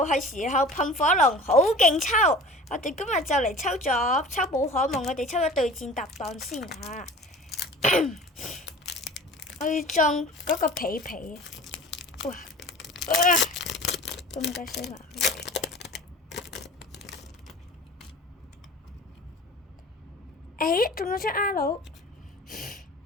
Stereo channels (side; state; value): both; normal; correlation 0.42